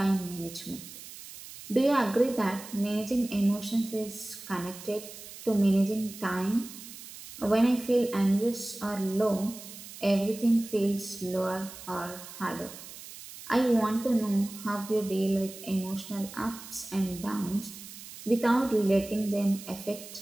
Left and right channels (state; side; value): noise; right; hiss, 14 dB below the sound